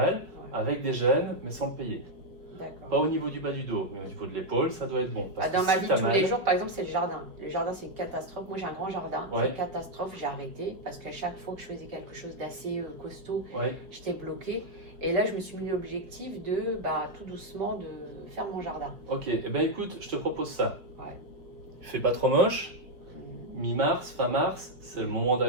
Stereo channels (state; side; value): late; left; 5.3 ms